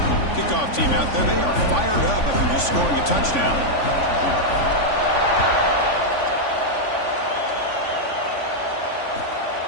Kickoff team out there, they are fired up after just scoring a touchdown.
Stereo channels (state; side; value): late; right; 3.5 ms